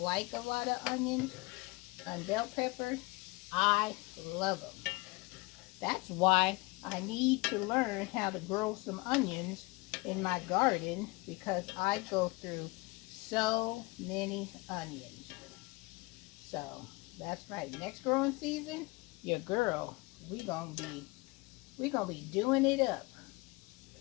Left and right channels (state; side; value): quieter; right; 24.9 dB